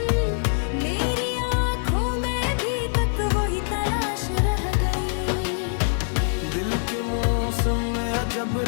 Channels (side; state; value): right; silent; digital silence